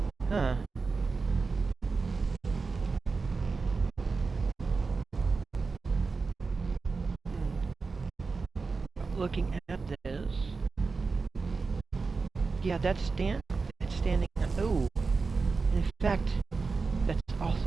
Huh. Looking at this... Yeah, it's standing... Oh! In fact, that's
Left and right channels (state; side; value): quieter; left; 4.4 dB